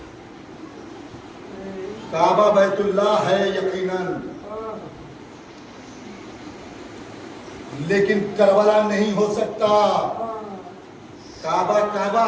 کعبہ بیت اللہ ہے یقیناً، لیکن کربلا نہیں ہو سکتا۔ کعبہ کعبہ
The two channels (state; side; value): identical; both; correlation 1.00